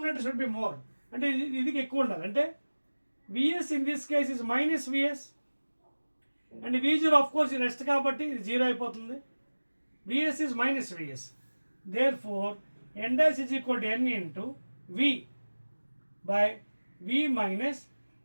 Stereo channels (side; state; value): both; inverted; correlation -1.00